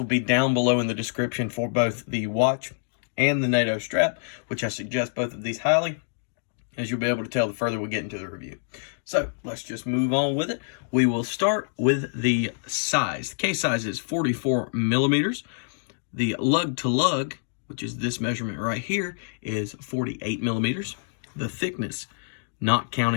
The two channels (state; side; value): silent; right; digital silence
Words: be down below in the description for both the watch and the NATO strap, which I suggest both of these highly, as you'll be able to tell the further we get into the review. So let's just move on with it. We will start with the size. The case size is 44 millimeters. The lug to lug, which is this measurement right here, is 48 millimeters. The thickness, not